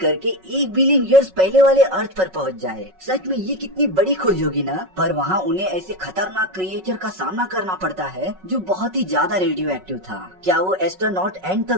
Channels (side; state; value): left; late; 5.4 ms